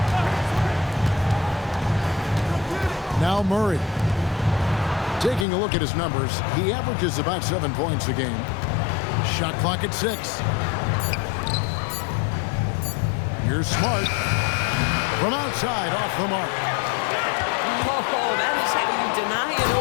Now Murray. Taking a look at his numbers, he averages about 7 points a game. Shot clock at 6. Here's Smart. From outside, off the mark. Oh, that is how you deny an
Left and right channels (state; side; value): drops out; right; at 5.5 s